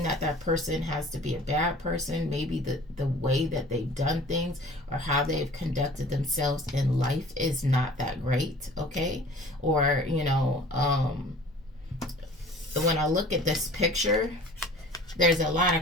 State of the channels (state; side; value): normal; both; correlation 0.46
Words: that person has to be a bad person. Maybe the way that they've done things or how they've conducted themselves in life is not that great, okay? Or, when I look at this picture, there's a lot